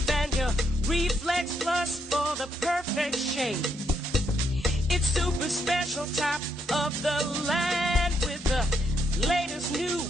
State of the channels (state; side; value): normal; both; correlation 0.77